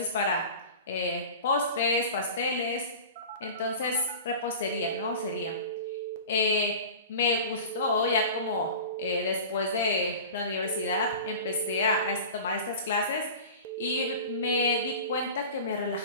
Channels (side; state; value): both; inverted; correlation -0.35